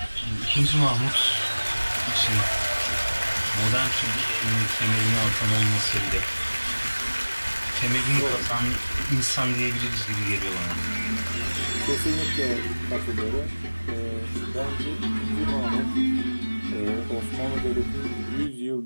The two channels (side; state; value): both; inverted; correlation -1.00